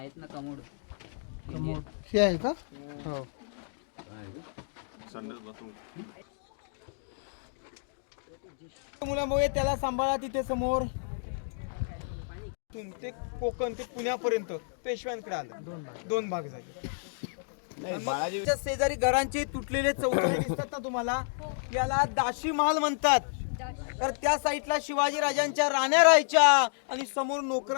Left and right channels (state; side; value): silent; right; digital silence